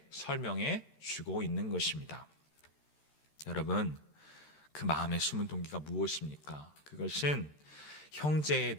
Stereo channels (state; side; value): late; right; 13 ms